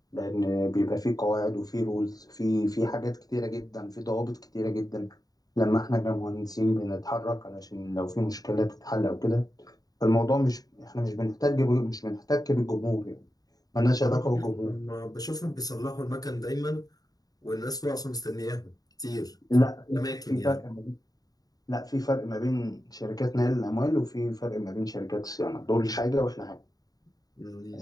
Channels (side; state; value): right; late; 0.18 ms